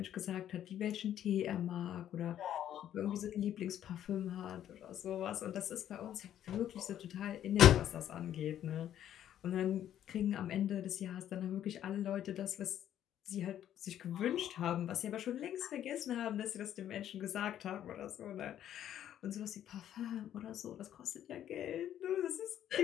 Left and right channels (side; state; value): right; quieter; 11.0 dB